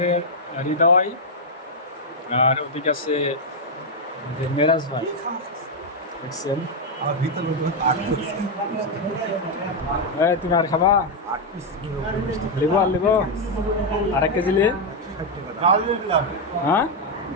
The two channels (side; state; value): both; normal; correlation 0.01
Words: হৃদয়, আর ওদিকে আছে আমাদের মেরাজ ভাই দেখছেন। তুমি আর খাবা? লিবো আর লিবো, আর 1 কেজি লি। হ্যাঁ